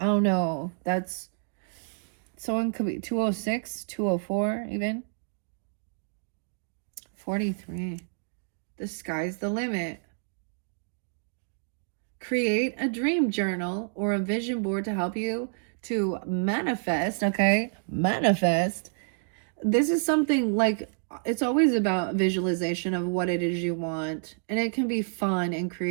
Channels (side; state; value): left; silent; digital silence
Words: don't know. That's Someone could be 206, 204 even. 43. The sky's the limit. Create a dream journal or a vision board to help you to manifest, okay? Manifest. This is something like it's always about visualization of what it is you want, and it can be fun and